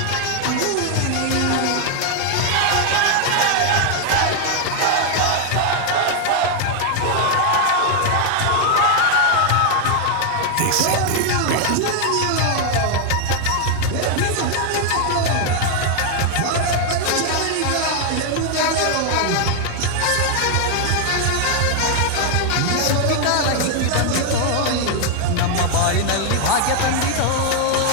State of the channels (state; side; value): different; both; correlation 0.00